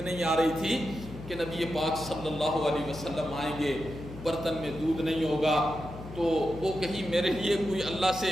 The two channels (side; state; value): left; noise; hum, 13 dB below the sound